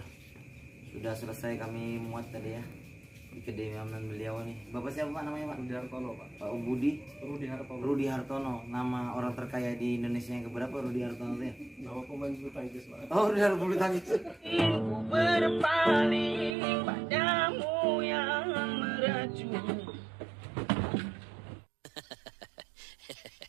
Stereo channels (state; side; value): drops out; left; at 16.6 s